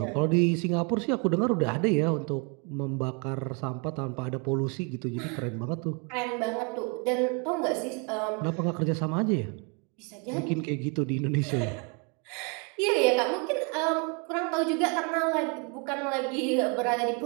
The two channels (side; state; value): left; quieter; 34.3 dB